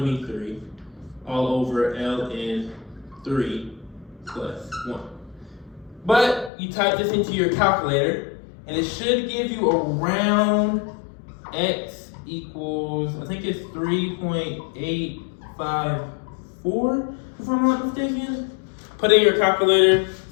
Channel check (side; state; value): right; drops out; at 6.5 s